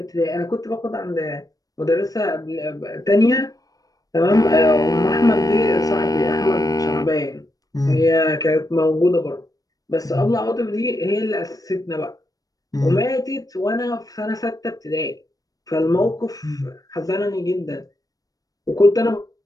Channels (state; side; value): late; right; 0.18 ms